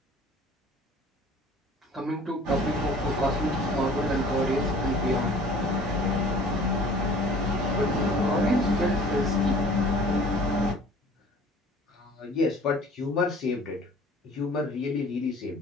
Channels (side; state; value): both; normal; correlation 0.48